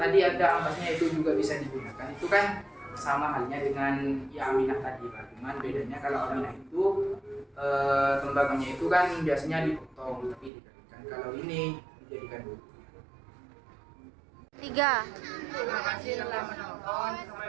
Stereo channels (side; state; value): left; drops out; at 10.5 s